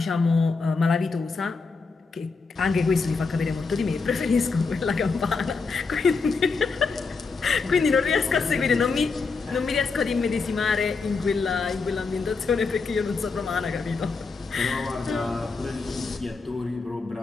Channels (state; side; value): quieter; right; 4.5 dB